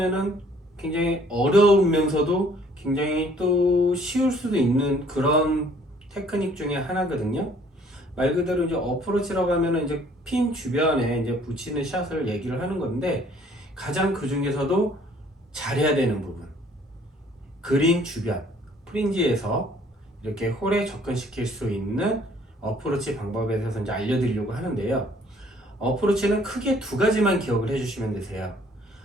굉장히 어려우면서도 굉장히 또 쉬울 수도 있는 그런 테크닉 중에 하나거든요. 말 그대로 이제 어프로치라고 하면은 이제 핀 주변에 이제 붙이는 샷을 얘기를 하는 건데, 가장 그 중에서도 잘해야 되는 부분, 그린 주변 프린지에서 이렇게 홀에 접근시킬 수 있는 어프로치 방법에 대해서 이제 알려드리려고 하는데요. 어프로치는 크게 두 가지만 기억을 해주시면 되세요.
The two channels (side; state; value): both; normal; correlation 0.59